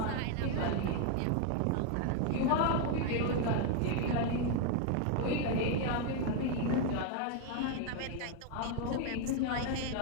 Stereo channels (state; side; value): different; both; correlation 0.01